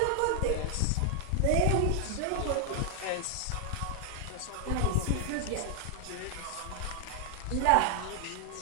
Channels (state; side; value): different; both; correlation 0.00